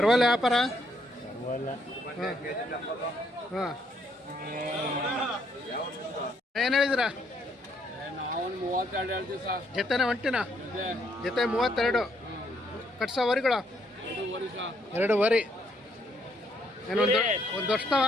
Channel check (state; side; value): normal; both; correlation 0.71